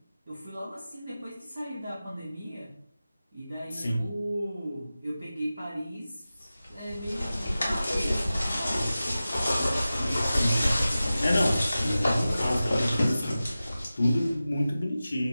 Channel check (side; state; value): both; inverted; correlation -0.95